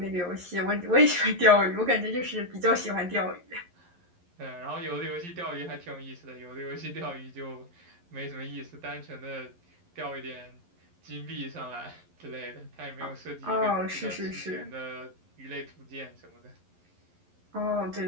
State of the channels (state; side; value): late; left; 11 ms